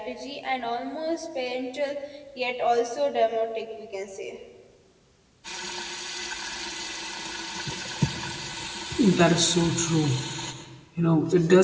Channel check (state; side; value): identical; both; correlation 1.00